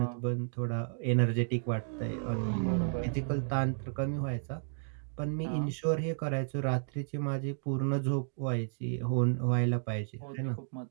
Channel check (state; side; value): silent; left; digital silence